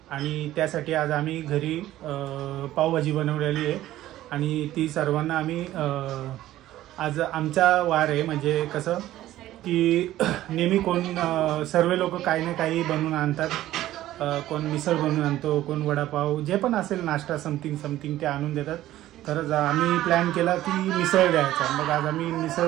आणि त्यासाठी आज आम्ही घरी पावभाजी बनवलेली आहे आणि ती सर्वांना आम्ही आज आमचा वार आहे. म्हणजे कसं की नेहमी कोण सर्व लोक काही ना काही बनवून आणतात. कोण मिसळ बनवून आणतो, कोण वडापाव, जे पण असेल नाश्ता समथिंग ते आणून देतात. तर आम्ही प्लॅन केला की मिसळ द्यायचा. मग आज आम्ही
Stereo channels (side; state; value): left; quieter; 14.4 dB